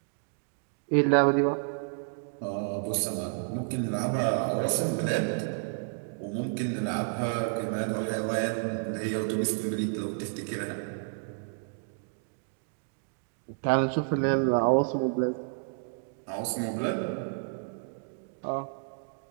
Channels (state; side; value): silent; left; digital silence